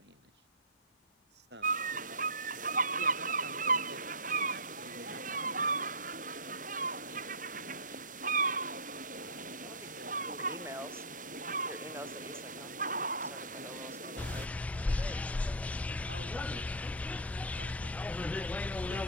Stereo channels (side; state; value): both; normal; correlation -0.14